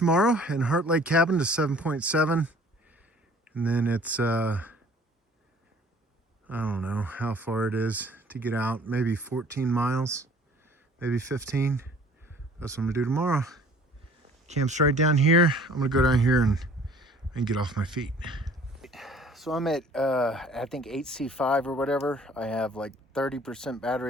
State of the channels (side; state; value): both; normal; correlation 0.52